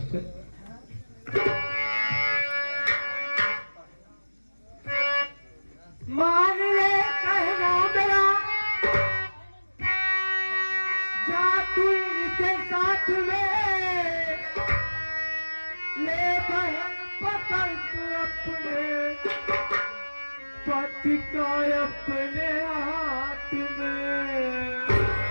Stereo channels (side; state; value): both; inverted; correlation -1.00